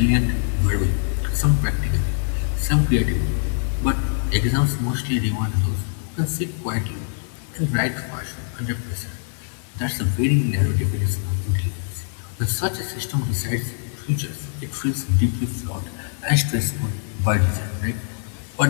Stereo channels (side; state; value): right; silent; digital silence